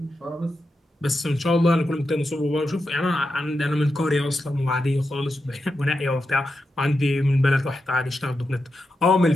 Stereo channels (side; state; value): both; normal; correlation 0.88